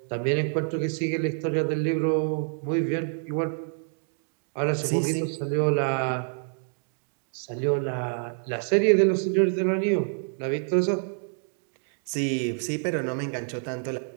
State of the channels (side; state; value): left; silent; 60 dB below the other